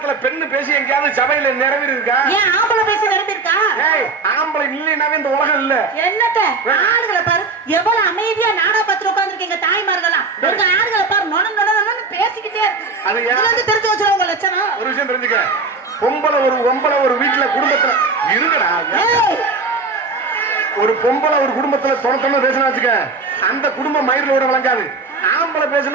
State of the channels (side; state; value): left; quieter; 4.1 dB